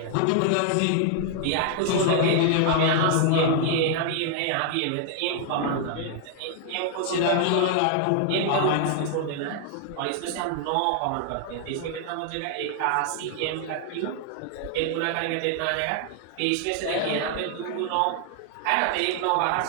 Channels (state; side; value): different; both; correlation 0.00